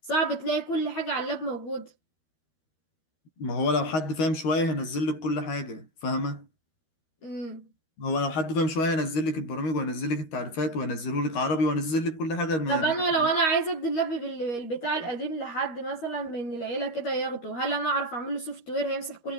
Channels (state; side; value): late; right; 13 ms